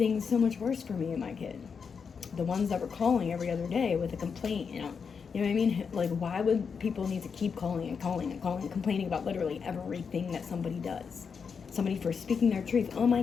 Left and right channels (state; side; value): quieter; right; 6.0 dB